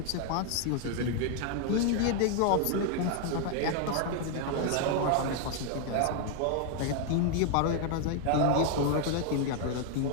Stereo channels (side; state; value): both; different; correlation 0.00